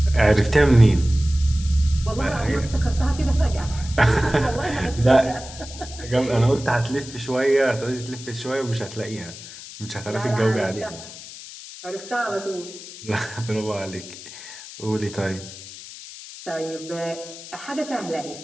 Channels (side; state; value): left; noise; hiss, 14 dB below the sound